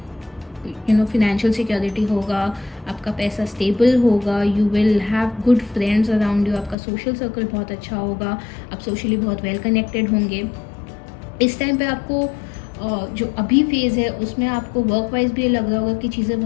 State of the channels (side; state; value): right; drops out; at 6.8 s